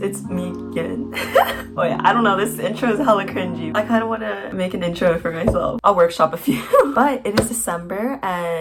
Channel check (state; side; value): identical; both; correlation 1.00